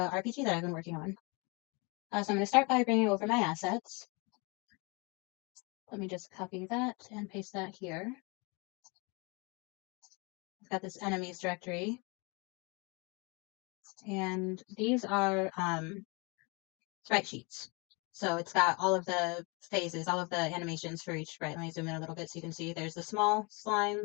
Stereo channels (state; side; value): quieter; right; 29.8 dB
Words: RPG that I've been working on. So I'm going to start by bringing over my assets. Let me just copy that and paste that here. I've got this enemies directory, and these are sprite sheets. So it's got all of the phases, all of the animations for each sprite. Let me zoom in a little bit so you can see there's the small slime